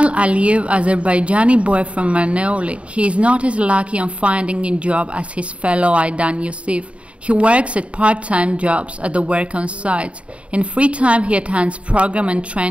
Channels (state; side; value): late; left; 0.062 ms